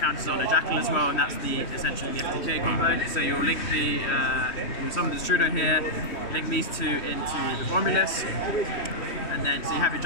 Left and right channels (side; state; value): right; late; 3.2 ms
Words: on a Jackal as well, and that's essentially the FTK combo. So you'll link you'll summon the Strudo here, link these two into the Romulus, and then so you have your